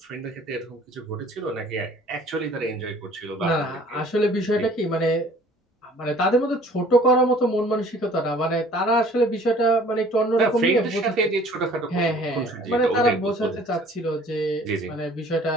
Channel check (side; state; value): both; normal; correlation 0.53